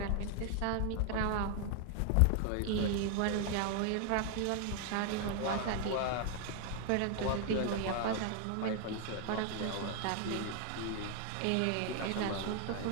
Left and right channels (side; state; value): both; different; correlation 0.00